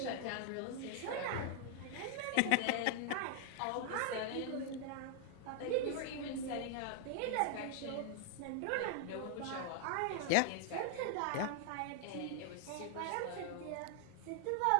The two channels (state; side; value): different; both; correlation 0.00